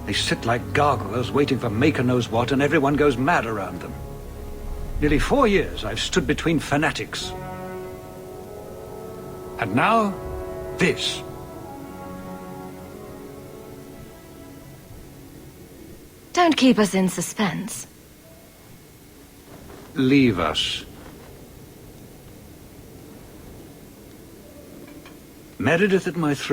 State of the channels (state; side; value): identical; both; correlation 1.00